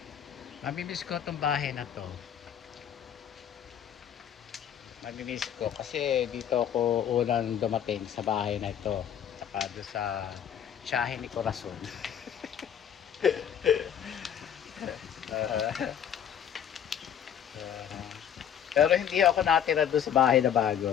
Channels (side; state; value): right; quieter; 9.1 dB